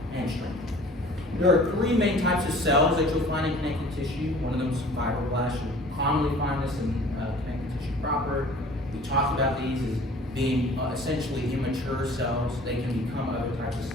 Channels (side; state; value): both; normal; correlation 0.47